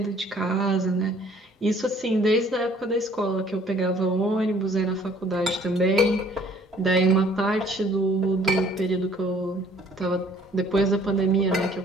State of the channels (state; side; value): normal; both; correlation 0.57